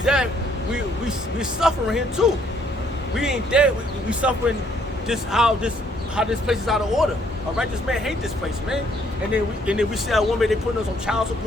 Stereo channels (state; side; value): normal; both; correlation 0.66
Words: that, we suffering here too. We ain't dead. We suffering just how this place is out of order. A righteous man hate this place, man. And then we see our women, they putting us on child